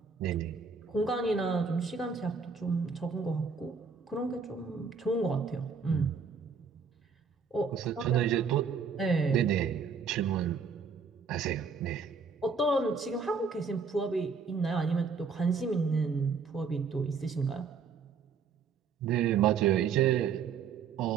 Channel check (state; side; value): quieter; left; 5.5 dB